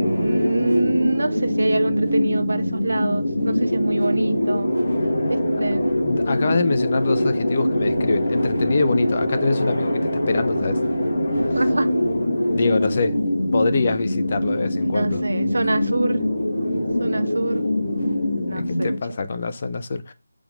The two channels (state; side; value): inverted; both; correlation -0.93